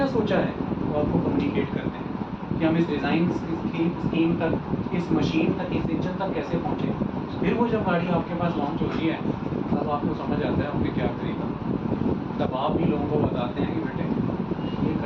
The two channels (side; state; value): both; identical; correlation 1.00